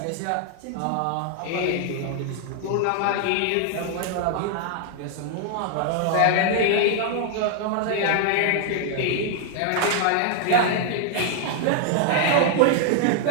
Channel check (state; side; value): different; both; correlation 0.00